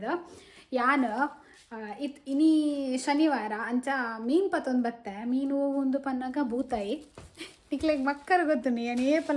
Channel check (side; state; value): both; identical; correlation 1.00